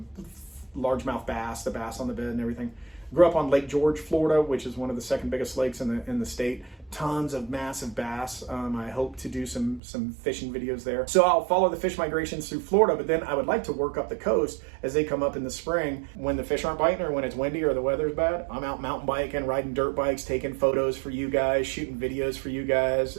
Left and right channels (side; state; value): left; drops out; at 9.8 s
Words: largemouth bass, the bass on the bed and everything. Grew up on Lake George, Florida, which is one of the second biggest lakes in the state. Tons of massive bass. I hope to do some fishing videos there. So I'll follow the fish migrations through Florida, but then I would like to work up the coast as they come up in the spring when the fish aren't biting or when it's windy or the weather's bad. I'm out mountain biking, riding dirt bikes, taking photos for you guys, shooting videos for you guys,